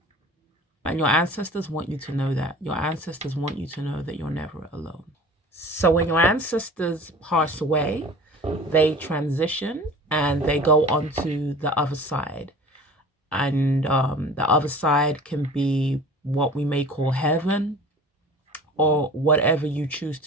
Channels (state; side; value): normal; both; correlation 0.42